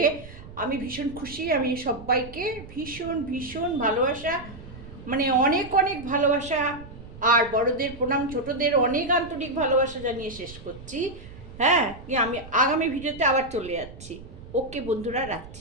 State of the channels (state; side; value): noise; right; rumble, 16 dB below the sound